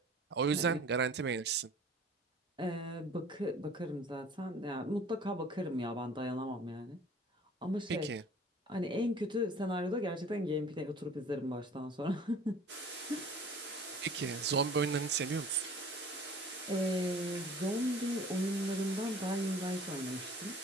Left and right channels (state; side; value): normal; both; correlation 0.47